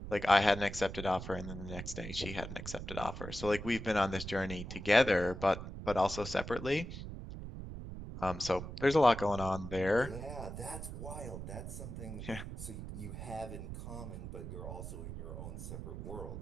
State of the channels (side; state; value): right; noise; rumble, 8 dB below the sound